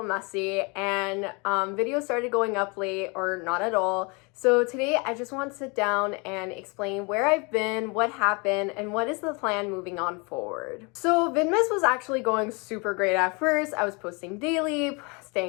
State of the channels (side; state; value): right; quieter; 30.3 dB